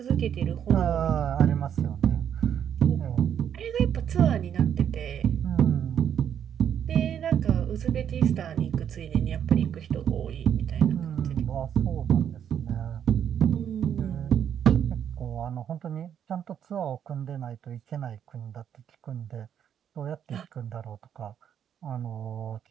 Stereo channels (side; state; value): left; quieter; 8.9 dB